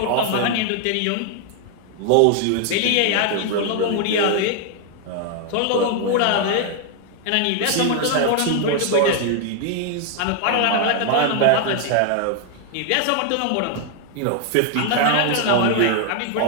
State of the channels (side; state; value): both; different; correlation 0.00